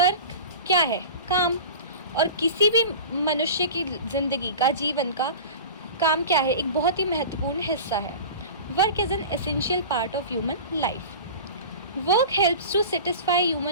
क्या है? काम. और किसी भी मनुष्य की ज़िंदगी का, जीवन का काम क्या है? एक बहुत ही महत्वपूर्ण हिस्सा है. Work is an essential part of human life. Work helps to satisfy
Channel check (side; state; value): both; inverted; correlation -0.34